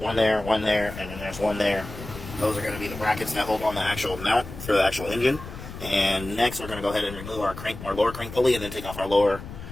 there, 1 there, and then there's 1 there. Those are going to be the brackets that hold on the actual mount for the actual engine. And next, we're going to go ahead and remove our lower crank pulley, and then take off our lower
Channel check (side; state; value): left; noise; rumble, 12 dB below the sound